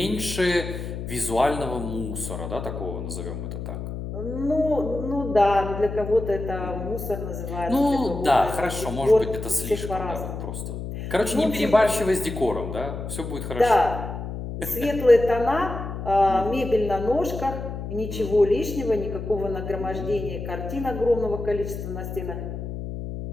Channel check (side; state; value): left; noise; hum, 7 dB below the sound